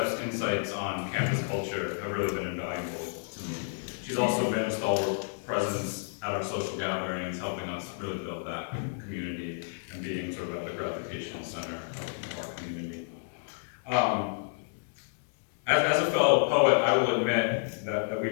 insights on campus culture have really been invaluable to me. She's also been a stalwart presence at our social gatherings, helping us really build that community and being sort of at the gravitation center of our community. As a fellow poet, I will admit that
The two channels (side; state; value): right; silent; digital silence